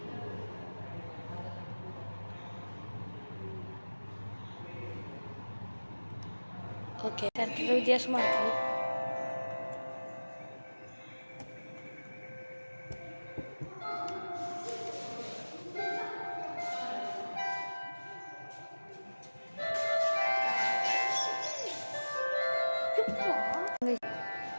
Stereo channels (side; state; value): both; inverted; correlation -1.00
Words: ஓகே, அடுத்தது வித்தியாசமாக இருக்குது.